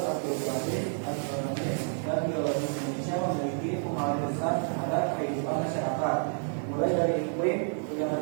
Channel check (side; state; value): left; silent; 58 dB below the other